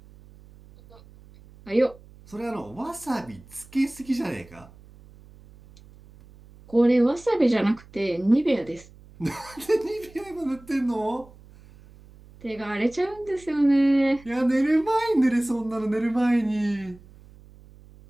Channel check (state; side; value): noise; right; hum, 23 dB below the sound